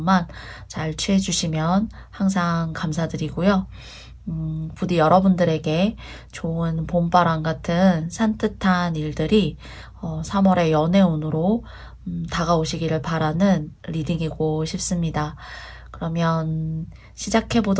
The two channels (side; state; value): both; identical; correlation 1.00